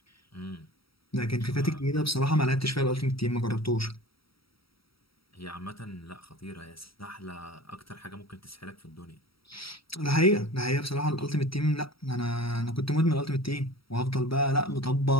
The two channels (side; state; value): right; late; 0.75 ms